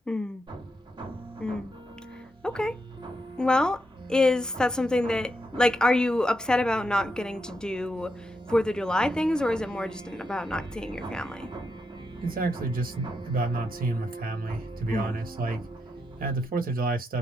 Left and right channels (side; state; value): both; normal; correlation 0.83